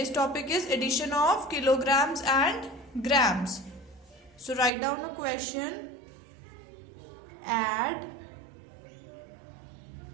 topic is addition of kilograms and grams. So write down a question. Add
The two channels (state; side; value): drops out; left; at 4.7 s